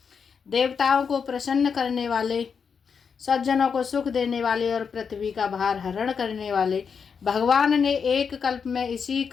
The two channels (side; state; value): right; quieter; 6.3 dB